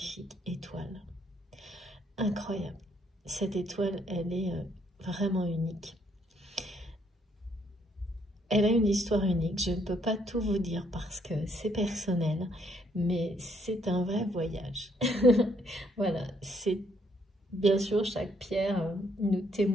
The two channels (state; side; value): normal; both; correlation 0.69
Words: étoile. Incroyable. Cette étoile, elle est vraiment unique. Elle a une histoire unique. Je ne peux pas tout vous dire parce que c'est personnel, mais c'est un vrai voyage. Voilà, c'est bien sûr chaque pierre nous